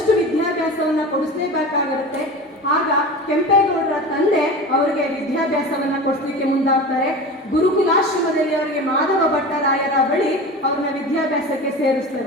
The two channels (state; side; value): normal; both; correlation 0.31